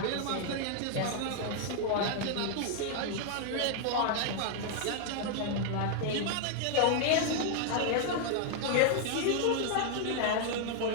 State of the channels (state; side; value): different; both; correlation 0.00